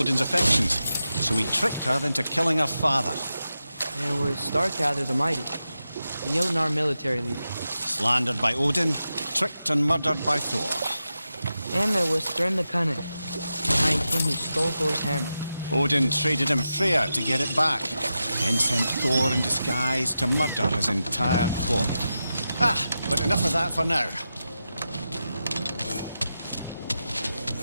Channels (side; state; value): both; inverted; correlation -0.90